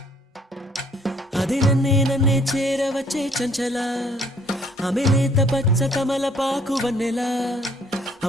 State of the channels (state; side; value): normal; both; correlation 0.61